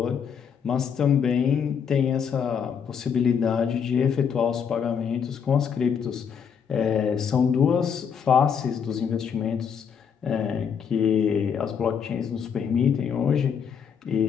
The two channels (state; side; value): quieter; right; 7.1 dB